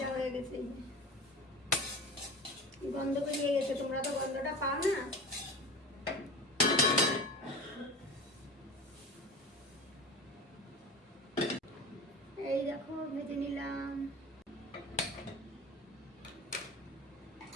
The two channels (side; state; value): both; normal; correlation 0.32